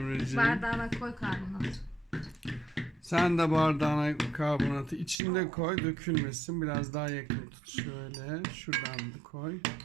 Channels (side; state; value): left; drops out; at 5.2 s